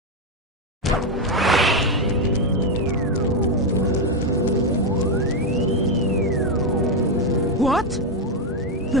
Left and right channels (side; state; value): both; normal; correlation 0.06